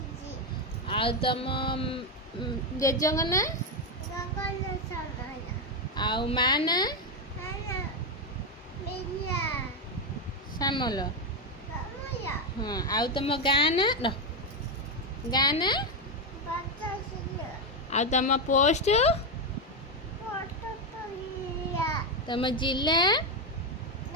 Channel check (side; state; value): both; normal; correlation 0.08